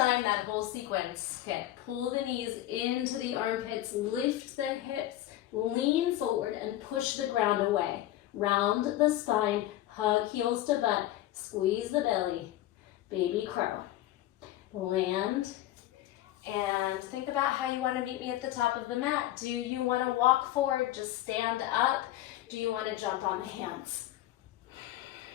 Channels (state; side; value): quieter; right; 14.3 dB